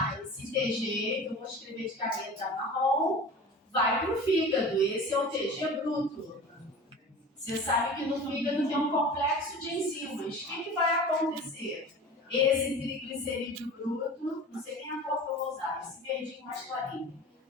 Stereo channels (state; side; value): normal; both; correlation 0.37